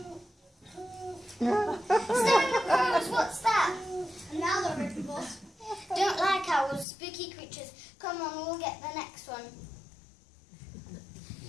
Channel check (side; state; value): right; drops out; at 6.9 s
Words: Staring at crows, what's that? Another written boss. Don't like owls, spooky creatures. Come on, we'll get the next one.